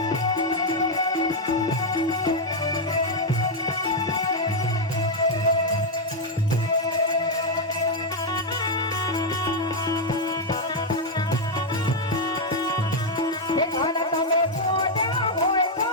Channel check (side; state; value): both; normal; correlation 0.01